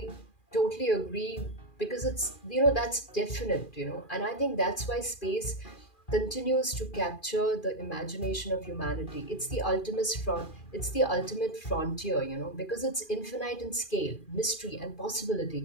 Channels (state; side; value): late; right; 2.4 ms